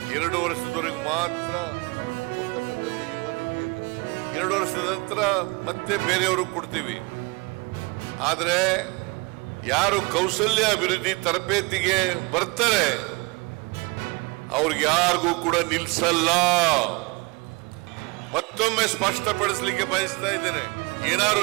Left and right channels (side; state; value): left; quieter; 27.5 dB